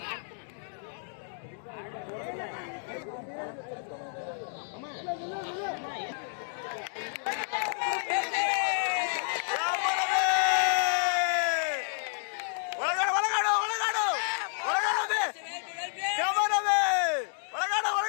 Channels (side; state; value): right; silent; digital silence